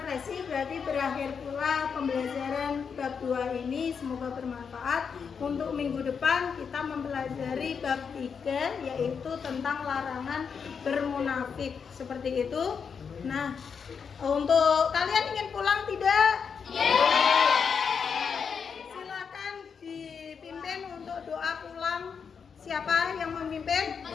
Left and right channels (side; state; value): right; quieter; 6.3 dB